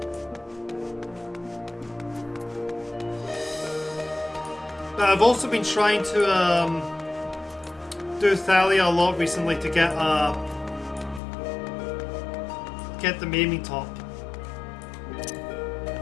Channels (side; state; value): right; drops out; at 11.2 s